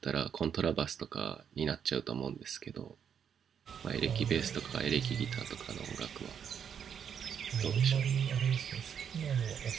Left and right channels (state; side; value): quieter; left; 7.9 dB